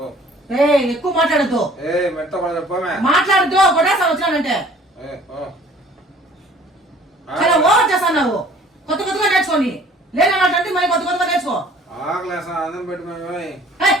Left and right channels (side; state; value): both; normal; correlation 0.53